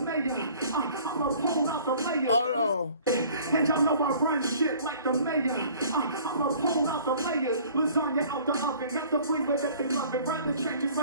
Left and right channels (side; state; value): both; inverted; correlation -0.52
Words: I'ma pull out the mayor. Oh no. And y'all know I run shit like the mayor. I'ma pull out the layers. Lasagna out the oven. Got the flavor that they love it. Rather changes